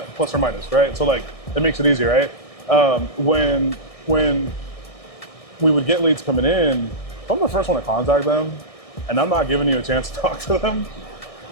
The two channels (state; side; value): late; right; 1.6 ms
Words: plus or minus, right? So, like, it makes it easier, right? When we would get leads coming in, if I'm the first one to contact them, and I'm not giving you a chance to talk to them,